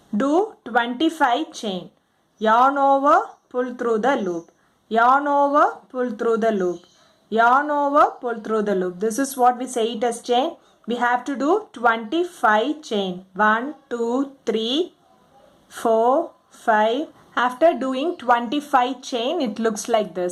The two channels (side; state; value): both; identical; correlation 1.00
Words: Do 25 chain. Yarn over, pull through the loop. Yarn over, pull through the loop. Yarn over, pull through the loop. This is what we say it as chain. We have to do 25 chain. 1, 2, 3, 4, 5. After doing 25 chain, it looks like